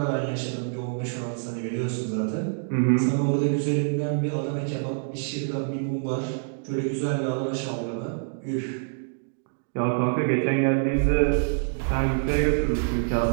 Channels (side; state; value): left; silent; digital silence